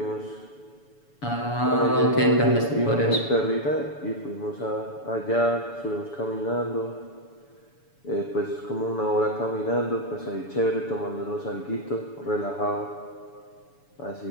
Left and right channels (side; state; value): right; late; 7.0 ms